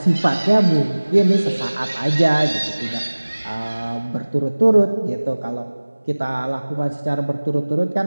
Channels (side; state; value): both; inverted; correlation -1.00